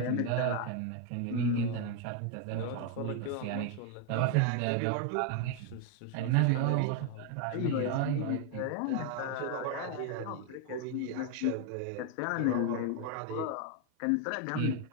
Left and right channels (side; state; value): both; different; correlation 0.01